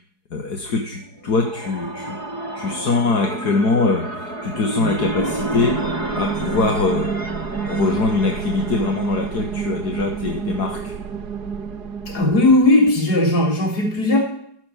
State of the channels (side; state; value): right; late; 4.8 ms